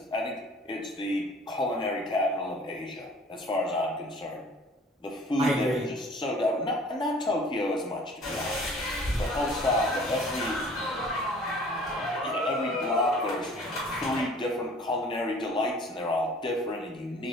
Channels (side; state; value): both; normal; correlation 0.50